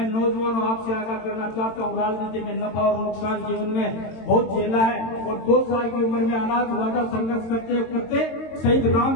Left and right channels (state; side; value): late; right; 22 ms